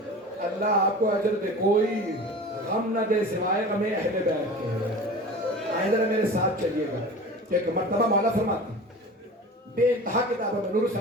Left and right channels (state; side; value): normal; both; correlation 0.36